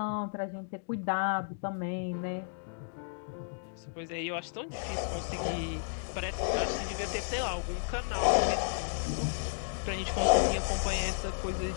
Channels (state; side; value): silent; right; digital silence